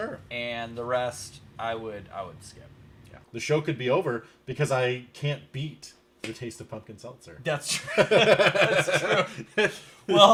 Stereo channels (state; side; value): identical; both; correlation 1.00